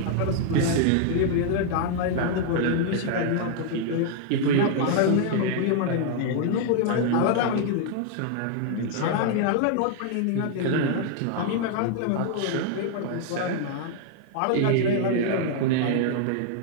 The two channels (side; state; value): both; different; correlation 0.00